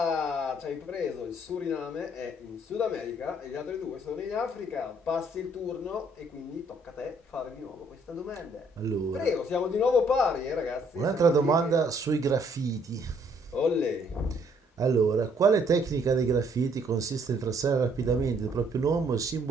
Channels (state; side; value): normal; both; correlation 0.65